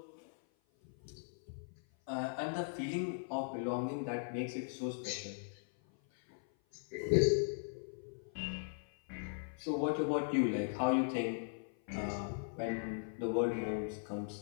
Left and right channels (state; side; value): silent; right; 52 dB below the other